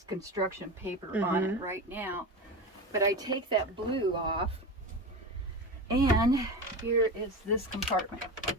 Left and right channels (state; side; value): normal; both; correlation 0.25